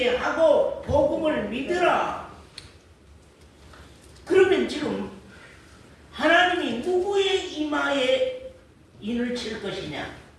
복음을 믿으라. 그러면 지금 하나님이 누구의 이마에 인을 칠 것이냐?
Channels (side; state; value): both; identical; correlation 1.00